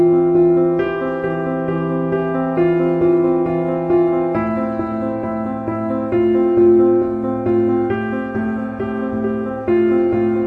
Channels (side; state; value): both; identical; correlation 1.00